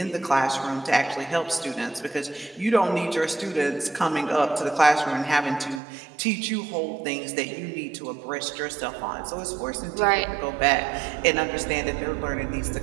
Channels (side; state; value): left; drops out; at 5.8 s